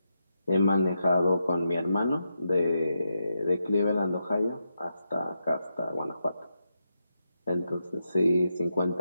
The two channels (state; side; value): inverted; both; correlation -0.85